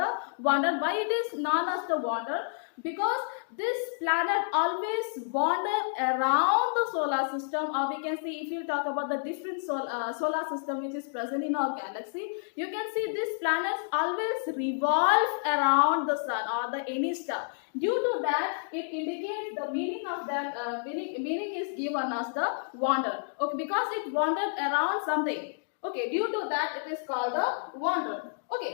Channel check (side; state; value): right; silent; digital silence